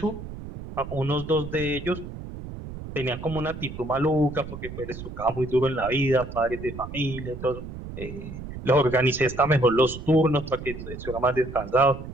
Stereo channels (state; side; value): noise; right; rumble, 10 dB below the sound